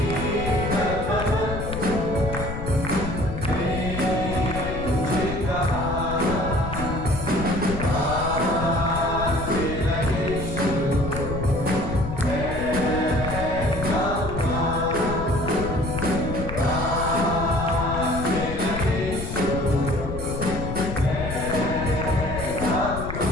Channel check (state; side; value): noise; left; rumble, 6 dB below the sound